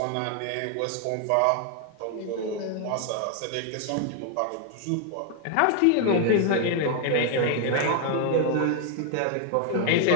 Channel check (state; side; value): different; both; correlation 0.00